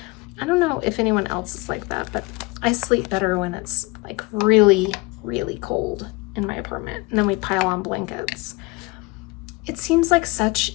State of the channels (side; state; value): right; quieter; 25.2 dB